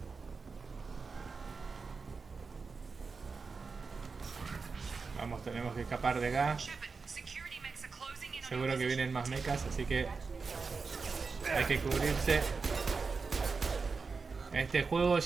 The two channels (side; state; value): left; quieter; 4.7 dB